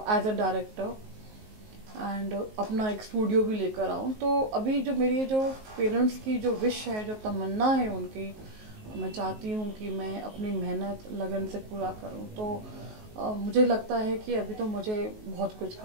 एज अ डायरेक्टर, एंड अपना एक स्टूडियो भी लेकर आऊँ। तो अभी जो मेरी जो पेरेंट्स की जो विश है, जो तमन्ना है उनकी, मैं चाहती हूँ कि मैं अपनी मेहनत लगन से पूरा करूँ। तो मुझे लगता है कि अभी तो मुझे बहुत कुछ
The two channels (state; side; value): late; left; 19 ms